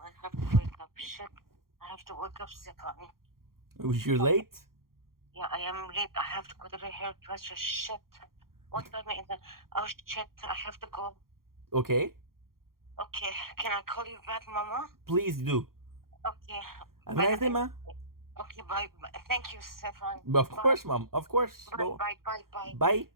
I have to wake up. Shit. I have to wake up, Sikani. Was you late? Yeah, I am late. I have to go to the hairdresser. Shit. What time is it? Oh, shit. I have to go. Okay. Okay. Can I call you back, Mama? Please do. Okay. Have a nice day, ma. Okay, bye. Thank you, Stefan. Of course, mom. Of course. Bye, Go. bye, bye, bye. Bye.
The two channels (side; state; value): left; late; 0.92 ms